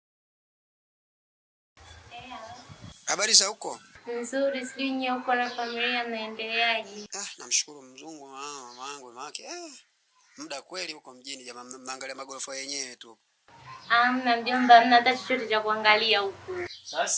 Habari za huko? Nzuri, sijui nyie huko na familia mnaendeleaje? Namshukuru Mzungu mama yangu wake. Muda kweli huko mjini jamaa, mnaangalia magorofa yenyewe tu. Hamna mjomba, hamna hata chochote cha kuangalia huko.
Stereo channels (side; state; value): both; identical; correlation 1.00